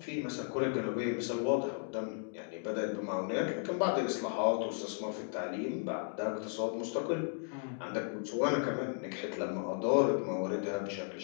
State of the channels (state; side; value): silent; right; 54 dB below the other